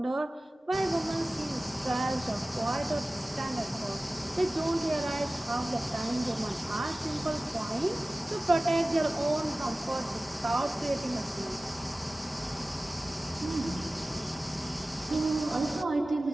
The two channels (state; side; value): normal; both; correlation 0.97